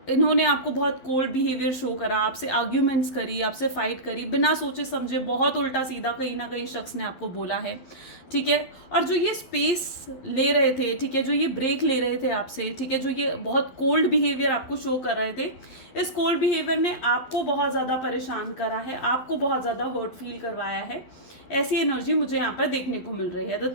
इन्होंने आपको बहुत कोल्ड बिहेवियर शो करा, आपसे आर्ग्यूमेंट्स करी, आपसे फाइट करी, बिना सोचे समझे, बहुत उल्टा सीधा कहीं ना कहीं शख्स ने आपको बोला है, ठीक है। और जो ये स्पेस ले रहे थे, ठीक है, जो ये ब्रेक ले रहे थे आपसे, ठीक है, जो ये बहुत कोल्ड बिहेवियर आपको शो कर रहे थे, इस कोल्ड बिहेवियर ने आपको बहुत ज़्यादा परेशान करा है, आपको बहुत ज़्यादा हर्ट फील करवाया है। ऐसी एनर्जी मुझे यहाँ पर देखने को मिल रही है। The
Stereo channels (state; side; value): late; right; 12 ms